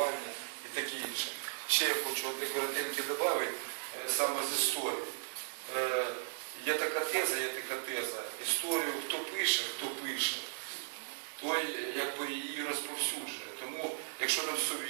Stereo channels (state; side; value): silent; left; digital silence